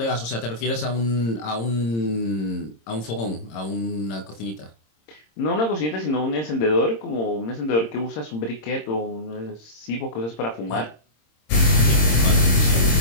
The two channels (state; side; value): late; right; 26 ms